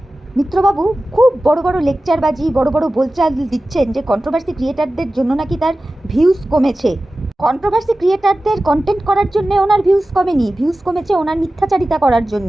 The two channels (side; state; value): both; normal; correlation 0.95